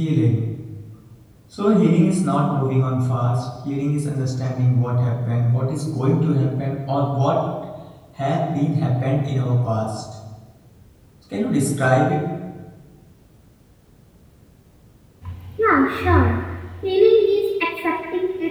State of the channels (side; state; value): both; identical; correlation 1.00